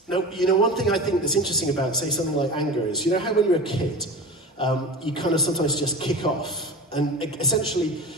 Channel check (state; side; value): normal; both; correlation 0.32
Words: Now, you know, one thing I think that's interesting about, say, something like anger is, you know how when you're a kid, you kind of sometimes just kick off. And essentially,